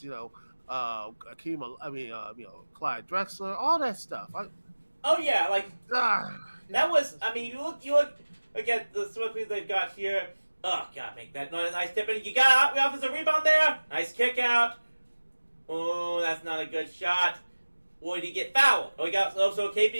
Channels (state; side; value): inverted; both; correlation -1.00